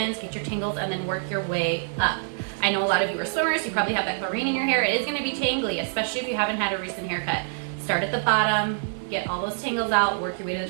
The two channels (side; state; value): left; silent; digital silence